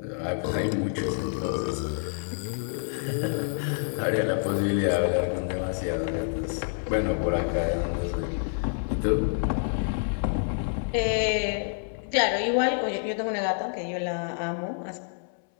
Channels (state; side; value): silent; right; 60 dB below the other